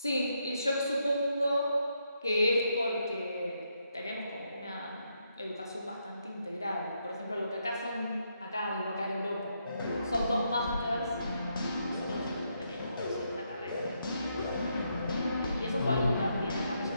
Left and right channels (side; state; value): both; inverted; correlation -0.79